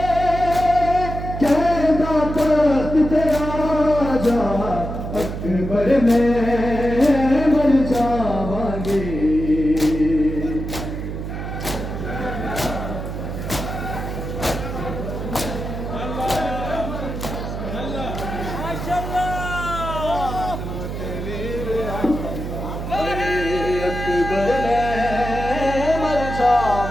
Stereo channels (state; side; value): noise; right; hum, 6 dB below the sound